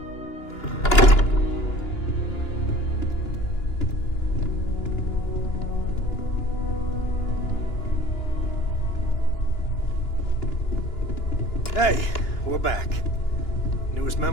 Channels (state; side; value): late; right; 2.9 ms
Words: Hey, we're back. Newest